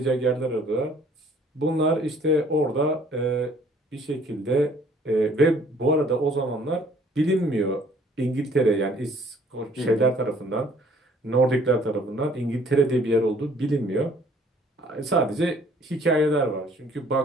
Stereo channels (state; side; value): normal; both; correlation 0.58